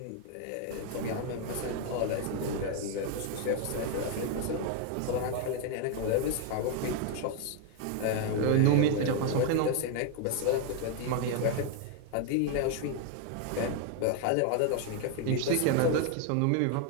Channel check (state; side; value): different; both; correlation 0.01